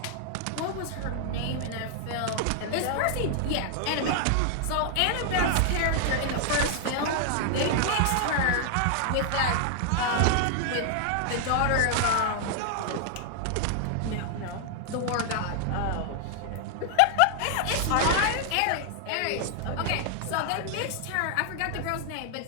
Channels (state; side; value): different; both; correlation 0.00